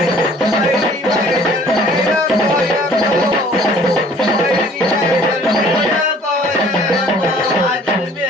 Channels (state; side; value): normal; both; correlation 0.54